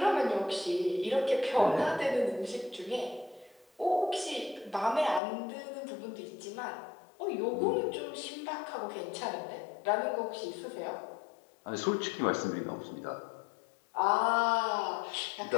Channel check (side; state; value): right; drops out; at 5.2 s